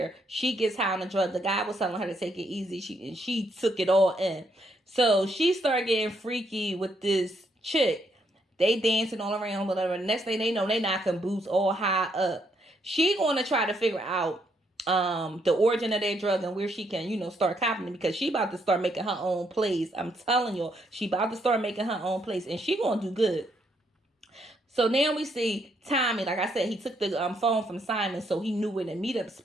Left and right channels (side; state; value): both; normal; correlation 0.74